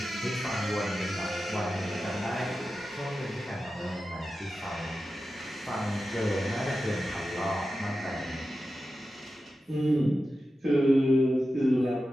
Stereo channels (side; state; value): both; normal; correlation 0.92